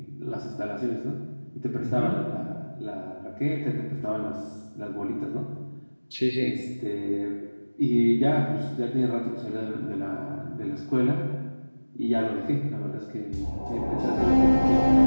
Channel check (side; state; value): both; inverted; correlation -1.00